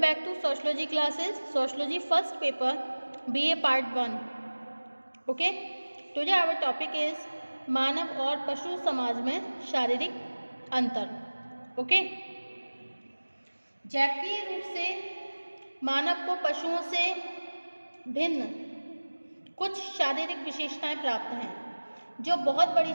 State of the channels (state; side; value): inverted; both; correlation -1.00